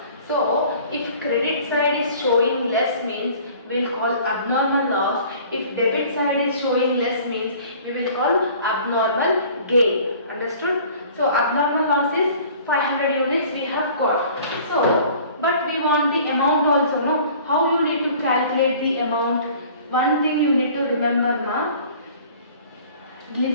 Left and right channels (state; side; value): inverted; both; correlation -0.49